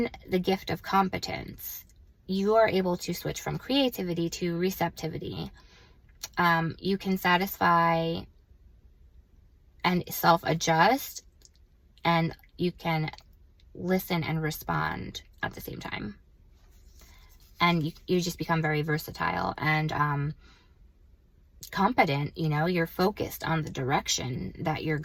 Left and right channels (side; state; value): both; identical; correlation 1.00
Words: the gift of competence, you are able to switch from creativity to receptivity. You can satisfy and self-adjust, and you can listen and respond at the same time. And you just become very versatile and competent. You know, you're focused on the direction that you're